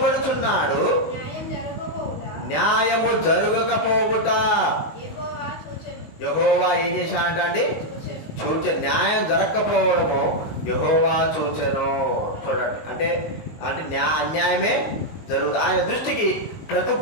న్యాయము జరగకపోవుట యెహోవా ఏం చేశాడంట అండి? న్యాయం జరగకపోవడము యెహోవా చూచెను. చూడండి, అంటే అన్యాయమే జరుగుతుంది. ఆయన దృష్టికి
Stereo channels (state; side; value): late; right; 19 ms